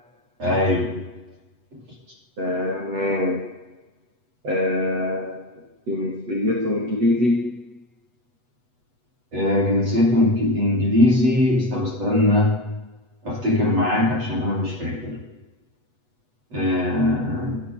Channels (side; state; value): left; late; 8.1 ms